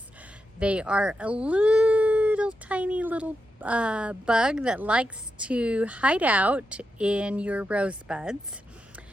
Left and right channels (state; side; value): normal; both; correlation 0.87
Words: they are a little tiny little bug that likes to hide out in your rose buds.